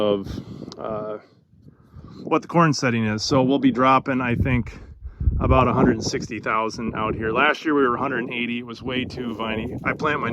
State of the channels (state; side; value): identical; both; correlation 1.00